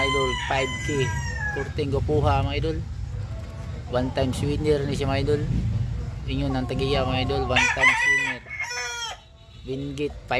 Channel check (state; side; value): identical; both; correlation 1.00